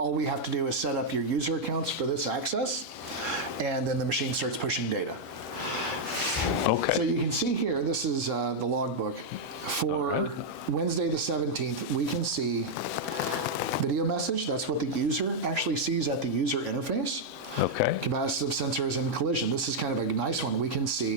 we have to do is set up your user accounts for this access, and then the machine starts pushing data. Okay. So you can see here, this is the logbook. For Wednesday the 17th, we can see video message. That's what the user actually sees at the user interface. Okay. Capacitive sensors and collision. This is kind of a nice one. We can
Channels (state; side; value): normal; both; correlation -0.02